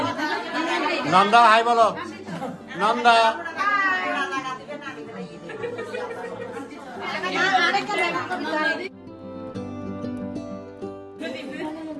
নন্দা হাই বলো, নন্দা।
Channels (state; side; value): identical; both; correlation 1.00